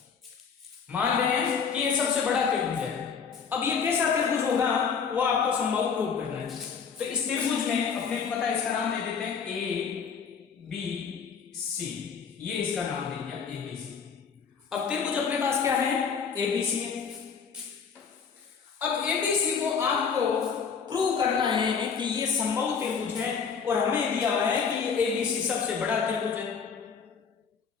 मान रहे हैं कि ये सबसे बड़ा त्रिभुज है। अब ये कैसा त्रिभुज होगा वो आपको संभव प्रूव करना है। तो इस त्रिभुज में अपने को पता है, इसका नाम दे देते हैं ए बी सी। ये इसका नाम दे दिया ए बी सी। अब त्रिभुज अपने पास क्या है? ए बी सी है। अब ए बी सी को आपको प्रूव करना है कि ये समबाहु त्रिभुज है, और हमें दिया हुआ है कि ये ए बी सी सबसे बड़ा त्रिभुज है।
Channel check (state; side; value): quieter; right; 6.2 dB